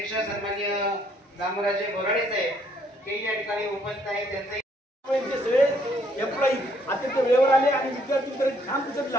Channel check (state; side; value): normal; both; correlation 0.67